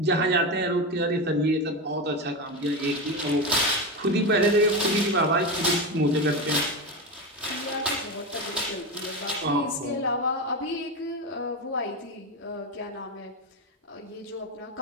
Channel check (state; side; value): normal; both; correlation 0.16